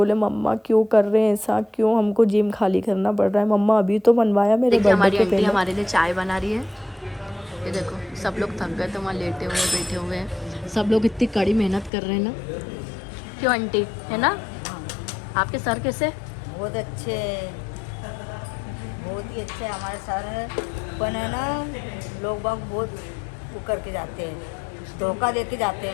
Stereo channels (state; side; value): drops out; right; at 11.9 s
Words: मम्मा क्यों कर रहे हैं ऐसा, क्यों हमको जिम खाली करना पड़ रहा है, मम्मा अभी तो बनवाया मेरे बर्थडे के पहले। हमारे लिए चाय बना रही है, ये देखो सब लोग थक गए तो वहाँ लेटे हुए बैठे हुए हैं, सब लोग इतनी कड़ी मेहनत कर रहे हैं ना, क्यों आंटी, है ना। आपके सर कैसे? बहुत अच्छे, बहुत ही अच्छे हमारे सर है। पर है ना, लोग बाग बहुत वो करके जाते हैं, धोखा दे के जाते